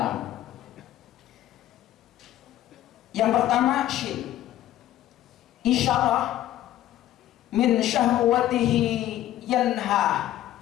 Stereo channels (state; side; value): quieter; right; 13.3 dB